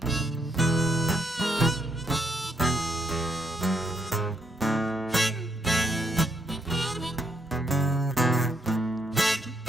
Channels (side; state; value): both; normal; correlation 0.75